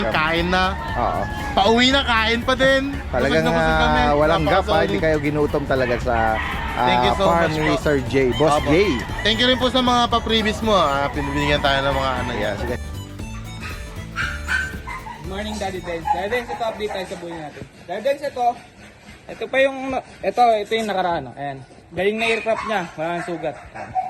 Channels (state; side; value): identical; both; correlation 1.00